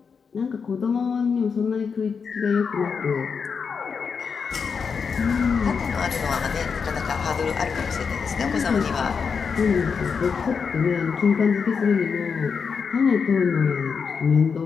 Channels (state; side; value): quieter; right; 5.8 dB